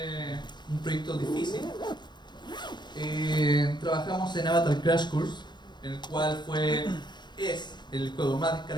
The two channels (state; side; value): late; right; 0.21 ms